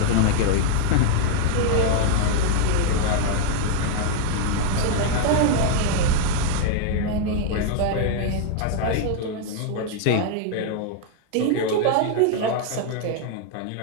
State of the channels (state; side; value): different; both; correlation 0.00